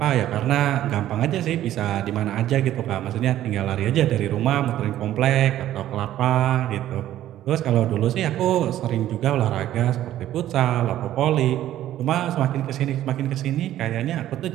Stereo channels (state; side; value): quieter; left; 12.9 dB